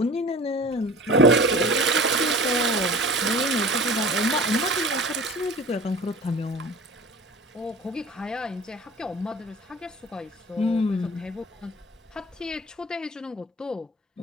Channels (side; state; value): both; normal; correlation 0.40